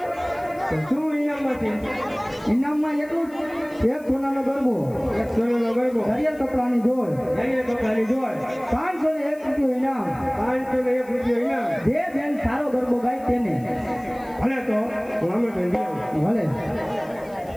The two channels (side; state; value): left; noise; hiss, 26 dB below the sound